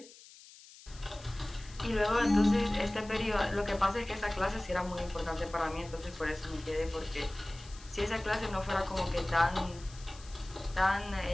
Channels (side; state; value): left; noise; hiss, 20 dB below the sound